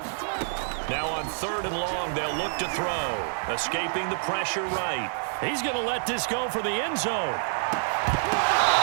Now on 3rd and long, they'll look to throw. Escaping the pressure right. He's going to let this go for the end zone.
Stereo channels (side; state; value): left; silent; digital silence